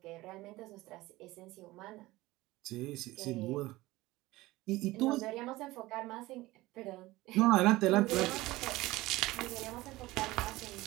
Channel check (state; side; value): quieter; left; 19.0 dB